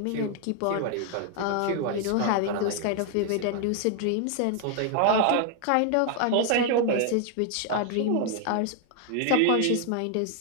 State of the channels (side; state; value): both; different; correlation 0.00